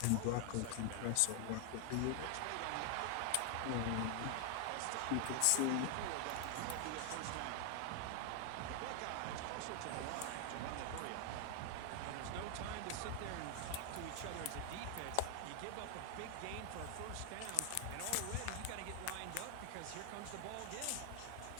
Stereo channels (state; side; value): different; both; correlation 0.00